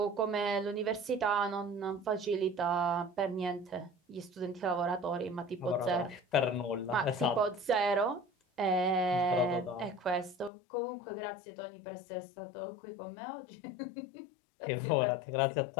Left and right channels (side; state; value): right; drops out; at 10.5 s